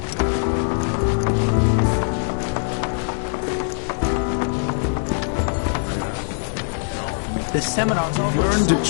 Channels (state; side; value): silent; right; 64 dB below the other